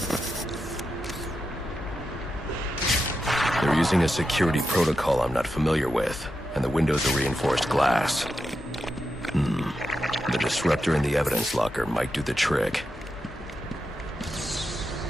They're using a security protocol I'm not familiar with, and the windows are reinforced glass. The disruptor in the evidence locker might do the trick.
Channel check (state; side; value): normal; both; correlation 0.88